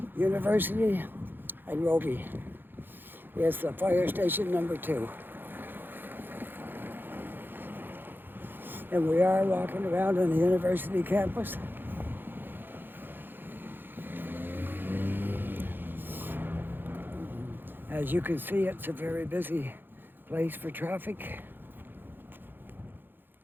University and Roby is the fire station number 2. And we are walking around on the university campus. As you can see, it's a very busy place for traffic.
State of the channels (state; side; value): late; left; 0.096 ms